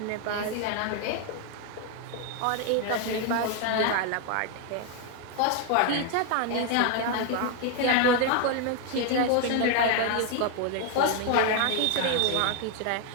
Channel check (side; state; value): both; different; correlation 0.01